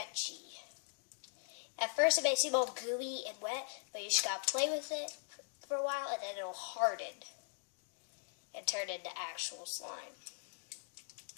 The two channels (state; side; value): silent; right; digital silence